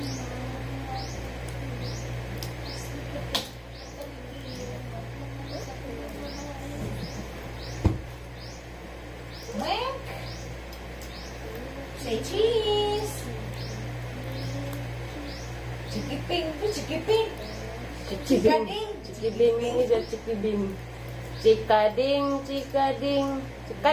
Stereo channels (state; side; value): identical; both; correlation 1.00